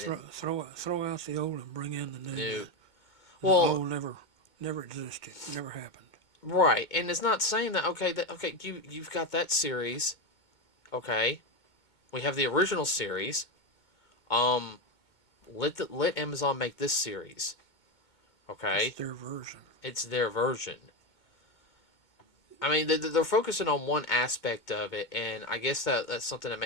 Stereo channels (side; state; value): right; late; 2.2 ms